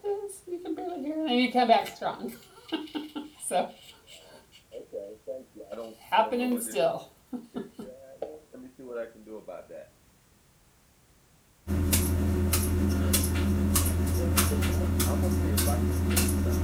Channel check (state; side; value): identical; both; correlation 1.00